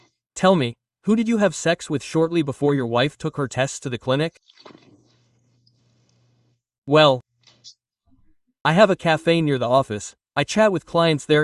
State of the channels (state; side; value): identical; both; correlation 1.00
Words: Tell me, who did you have sex with shortly before your wife took her tests to the clinic? Well, I have a cafe near the office. I chat with clients